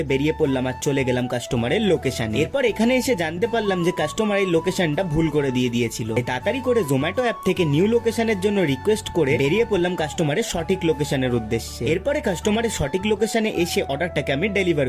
বেরিয়ে পড়লাম আর চলে গেলাম কাস্টমারের লোকেশনে। এরপর এখানে এসে জানতে পারলাম যে কাস্টমার এই লোকেশনটা ভুল করে দিয়েছিল। তাড়াতাড়ি করে জোম্যাটো অ্যাপ থেকে নিউ লোকেশনের জন্য রিকোয়েস্ট করে বেরিয়ে পড়লাম কাস্টমারের সঠিক লোকেশনের উদ্দেশ্যে। এরপরে কাস্টমারের সঠিক লোকেশনে এসে অর্ডারটাকে আমি ডেলিভার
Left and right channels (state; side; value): identical; both; correlation 1.00